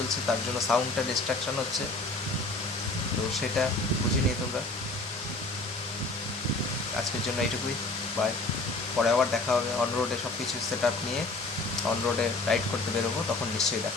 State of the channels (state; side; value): quieter; right; 3.0 dB